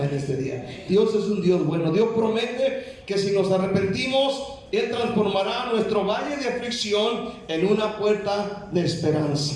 este día? Dios es un Dios bueno. Dios promete que si nos arrepentimos, Él transformará nuestro valle de aflicción en una puerta de esperanza.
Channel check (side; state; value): both; identical; correlation 1.00